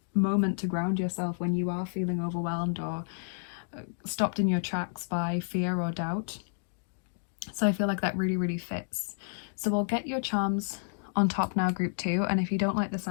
moment to ground yourself when you are feeling overwhelmed or stopped in your tracks by fear or doubt. So I feel like that really, really fits. So we'll get your charms on top now, group 2. And if you don't like the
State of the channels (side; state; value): right; silent; digital silence